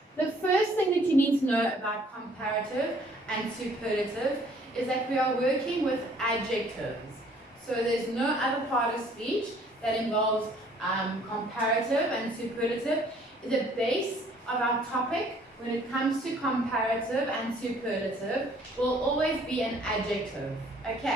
The first thing that you need to know about comparative and superlative is that we are working with adjectives. So there's no other part of speech that involves comparative and superlative. The base of our topic when it comes to comparative and superlative will always be an adjective.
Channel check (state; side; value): normal; both; correlation 0.59